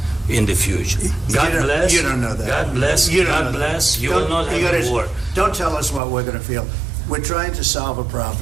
in the future. God bless. You don't know that. God bless. God bless. You will not have a war. Don't tell us what we're going to feel. We're trying to solve a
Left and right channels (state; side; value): drops out; left; at 6.0 s